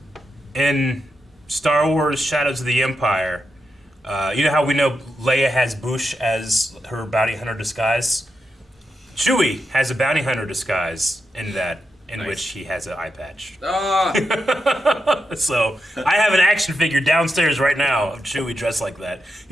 In Star Wars Shadows of the Empire, you know how we know Leia has Boushh as her bounty hunter disguise? Chewie has a bounty hunter disguise in that, in which he has an eye patch. So I have an action figure downstairs right now of Chewie dressed like that.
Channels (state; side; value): normal; both; correlation 0.86